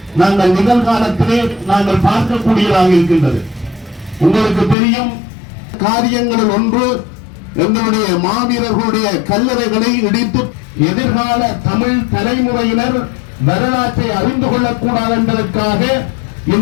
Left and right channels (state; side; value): drops out; right; at 4.8 s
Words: நாங்கள் நிகழ்காலத்திலே நாங்கள் பார்க்கக்கூடியதாக இருக்கின்றது. உங்களுக்கு தெரியும், காரியங்களில் ஒன்று எங்களுடைய மாவீரர்களுடைய கல்லறைகளை இடித்து எதிர்கால தமிழ் தலைமுறையினர் வரலாற்றை அறிந்து கொள்ளக்கூடாது என்பதற்காக